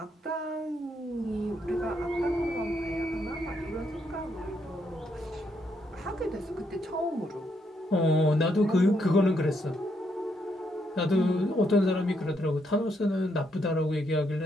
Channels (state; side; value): normal; both; correlation 0.76